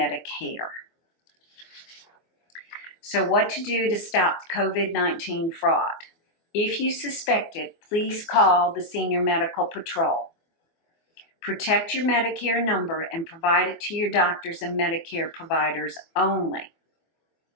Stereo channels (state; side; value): late; right; 24 ms